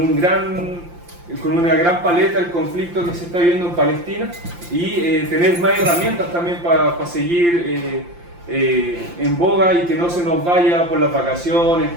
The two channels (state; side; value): late; left; 5.8 ms